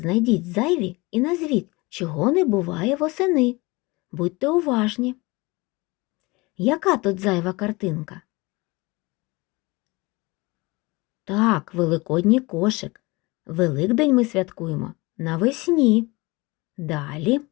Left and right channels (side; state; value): right; quieter; 24.0 dB